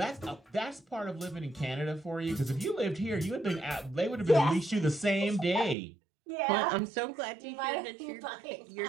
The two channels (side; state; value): left; drops out; at 5.8 s